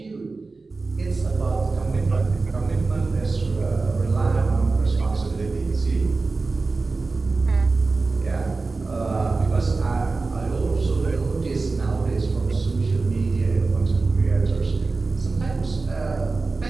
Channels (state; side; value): quieter; left; 3.8 dB